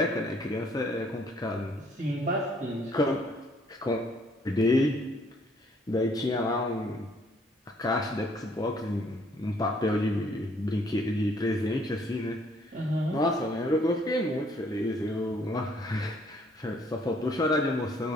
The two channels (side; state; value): both; normal; correlation 0.64